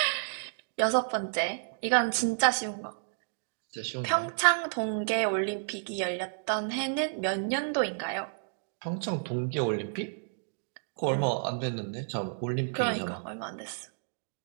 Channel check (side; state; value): left; silent; digital silence